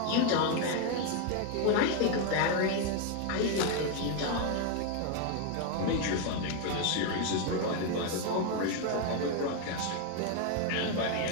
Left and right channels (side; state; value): both; different; correlation 0.01